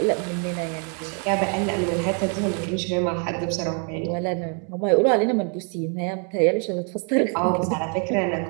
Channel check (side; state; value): left; quieter; 39.7 dB